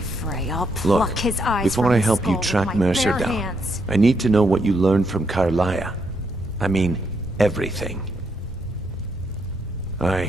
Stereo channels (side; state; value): both; normal; correlation 0.77